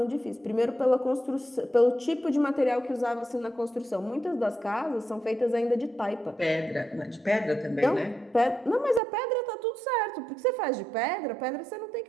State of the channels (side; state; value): left; drops out; at 9.0 s